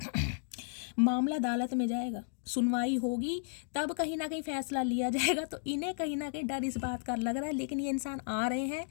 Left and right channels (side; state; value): right; silent; digital silence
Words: मामला अदालत में जाएगा, सुनवाई होगी, तब कहीं ना कहीं फैसला लिया जाएगा। तो इन्हें कहीं ना कहीं डर इस बात का लग रहा है, लेकिन ये इंसान आ रहे हैं,